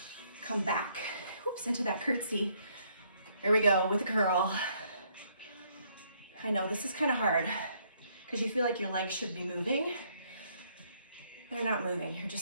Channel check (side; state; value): both; inverted; correlation -0.69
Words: Come back, oops, into that curtsy. Here we go with a curl. I know this is kind of hard because you feel like your legs should be moving. They're not moving, you're